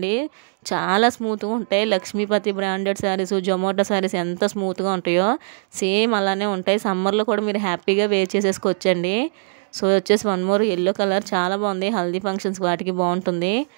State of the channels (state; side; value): silent; left; digital silence